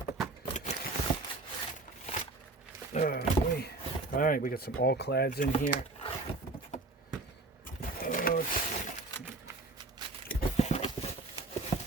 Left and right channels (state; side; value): quieter; left; 3.2 dB